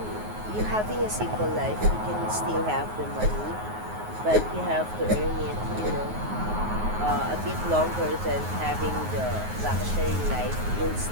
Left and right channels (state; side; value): late; left; 9.4 ms